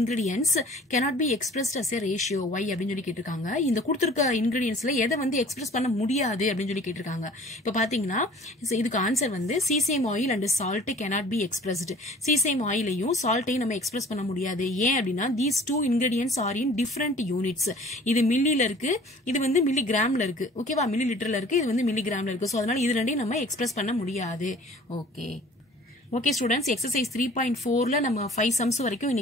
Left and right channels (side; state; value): both; normal; correlation 0.49